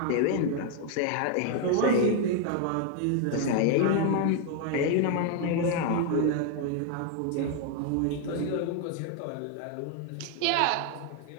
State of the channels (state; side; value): different; both; correlation 0.00